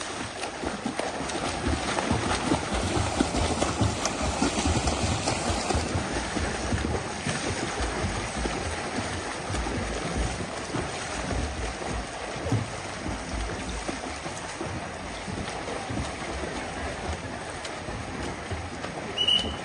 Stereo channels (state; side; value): identical; both; correlation 1.00